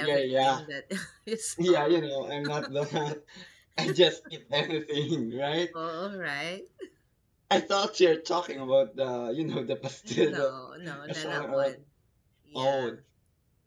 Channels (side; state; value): both; identical; correlation 1.00